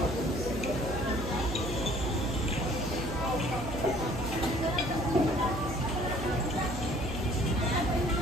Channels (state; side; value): noise; right; hum, 7 dB below the sound